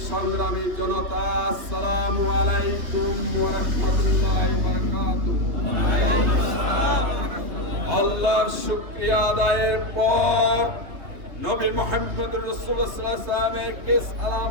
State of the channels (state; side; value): late; left; 3.3 ms